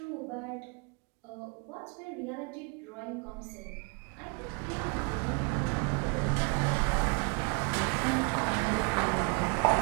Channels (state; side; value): quieter; left; 33.8 dB